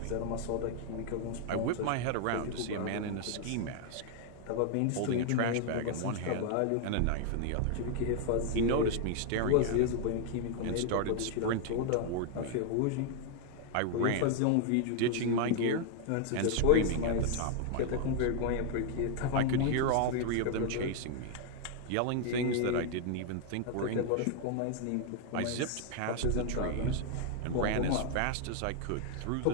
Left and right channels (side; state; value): both; different; correlation 0.00